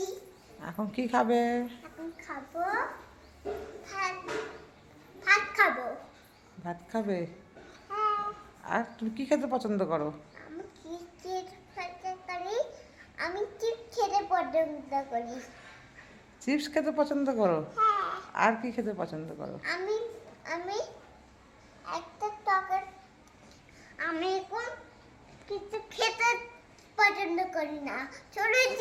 এখন কি খাবে? এখন খাবো ভাত। ভাত খাবো। ভাত খাবে? হ্যাঁ। আর তুমি কি খেতে পছন্দ করো? আমি কি খেতে করি? আমি চিপস খেতে পছন্দ করি। চিপস খেতে পছন্দ করো? হ্যাঁ। আর কি খেতে পছন্দ করো? আমি আমি একটা টকের আমি এখন কিছু খেতে পছন্দ করি না, ছোট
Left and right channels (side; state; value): both; identical; correlation 1.00